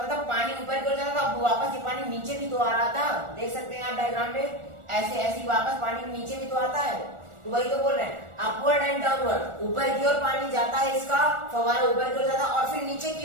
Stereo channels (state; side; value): late; left; 1.4 ms